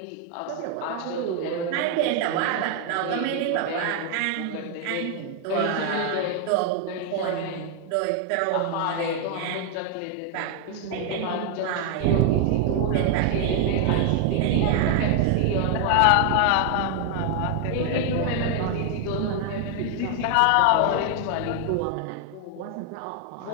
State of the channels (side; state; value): both; different; correlation 0.00